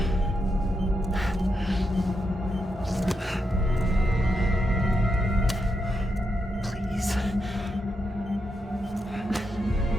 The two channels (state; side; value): normal; both; correlation 0.83